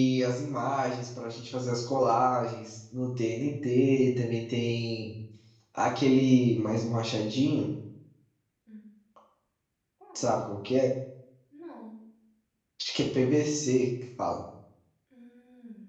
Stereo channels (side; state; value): both; identical; correlation 1.00